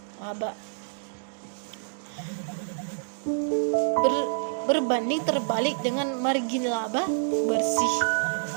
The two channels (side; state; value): left; silent; digital silence